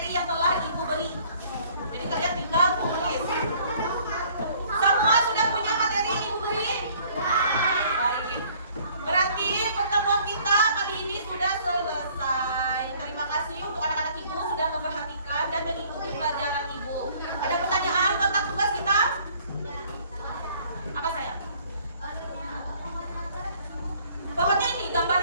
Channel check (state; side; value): inverted; both; correlation -0.58